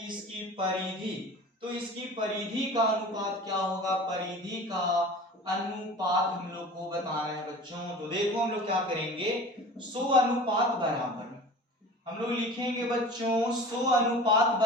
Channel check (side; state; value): both; normal; correlation 0.39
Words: इसकी परिधि का अनुपात क्या होगा, परिधि का अनुपात हम लोग को बताना है बच्चों। तो देखो हम लोग क्या करेंगे, 100 अनुपात बराबर हम लोग लिखेंगे बच्चों, 100 अनुपात